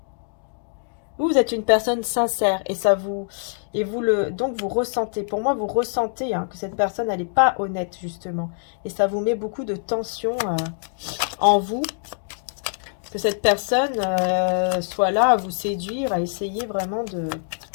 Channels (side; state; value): right; silent; digital silence